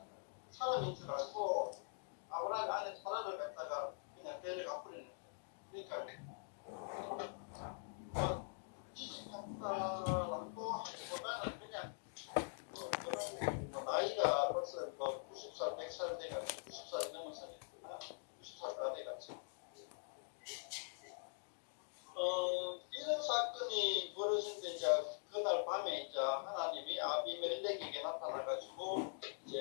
사람인 줄 알고 아브라함의 아내 사라를 갖다가 그냥 데려가 버리는 거예요. 그러니까 지식한다라고 하기보다는 그냥 나이가 벌써 90살, 100살 돼가지고 90살이 넘었으니까 90살가 돼가지고 이런 사건이 벌어진데 이제 그날 밤에 이제 하나님이 아비멜렉에게 나타나가지고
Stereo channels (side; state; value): right; silent; digital silence